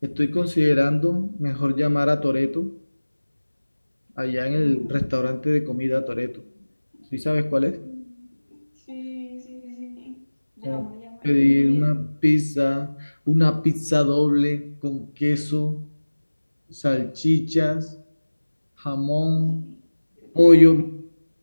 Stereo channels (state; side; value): inverted; both; correlation -1.00